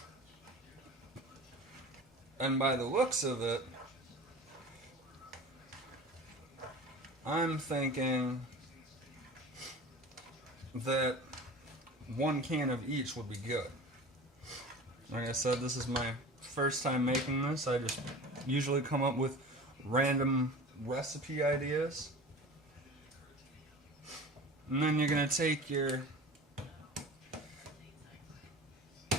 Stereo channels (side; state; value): both; normal; correlation 0.37